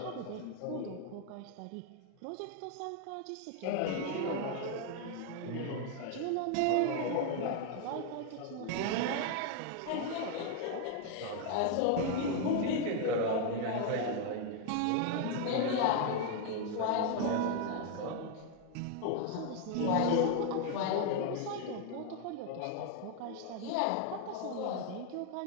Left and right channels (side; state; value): both; different; correlation 0.00